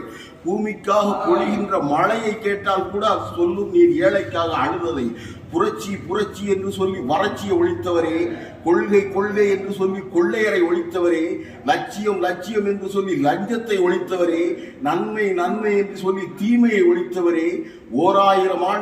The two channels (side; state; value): both; identical; correlation 1.00